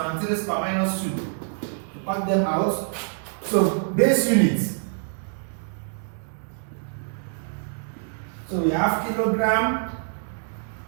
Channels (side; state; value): left; silent; digital silence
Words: raised per minus 2. Cut them out. So base unit. So we have kilogram